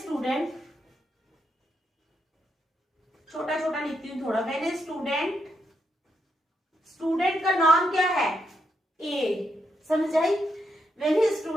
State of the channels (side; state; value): both; normal; correlation 0.81